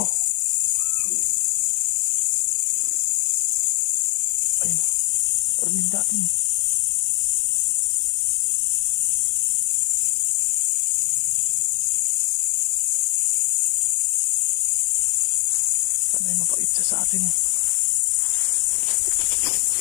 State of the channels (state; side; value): silent; right; digital silence